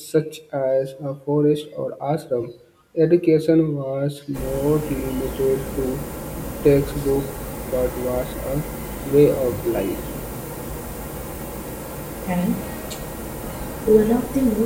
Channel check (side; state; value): both; identical; correlation 1.00